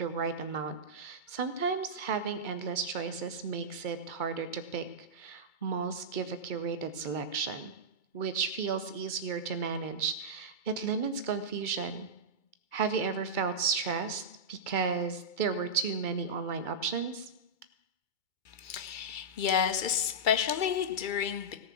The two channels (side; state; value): right; late; 2.3 ms